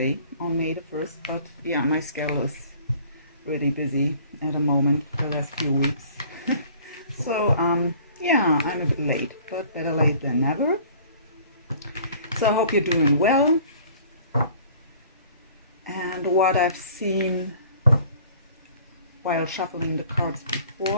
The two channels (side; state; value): both; inverted; correlation -0.52